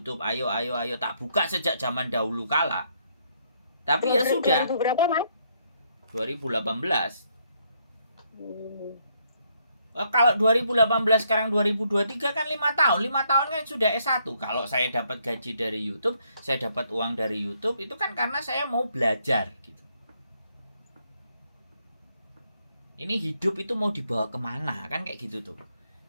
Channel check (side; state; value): both; inverted; correlation -0.72